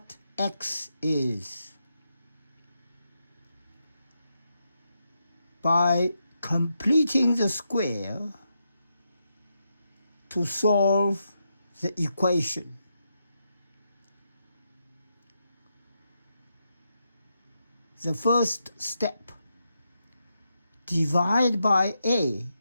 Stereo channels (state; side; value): inverted; both; correlation -0.84